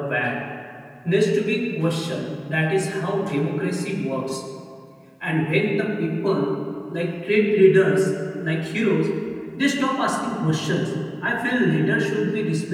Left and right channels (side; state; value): both; identical; correlation 1.00